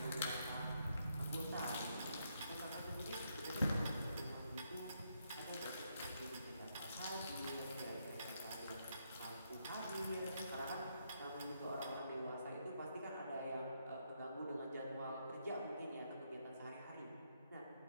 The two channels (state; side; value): inverted; both; correlation -0.77